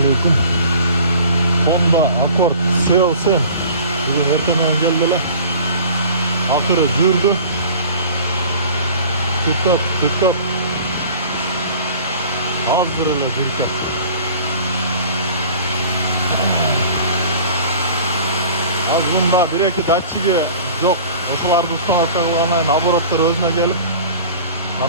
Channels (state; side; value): inverted; both; correlation -0.44